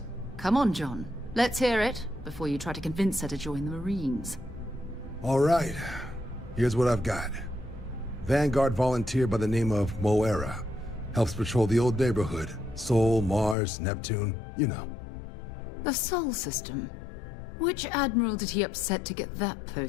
Come on, John. Let's hear it, before you try to convince her to join the Marines. All right, here's what I've got. Vanguard volunteer by the name of Moira. Helps patrol the old neighborhood. Sol, Mars, Neptune, you know. The Sol system? Which admiral did he upset to get that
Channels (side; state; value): right; drops out; at 13.6 s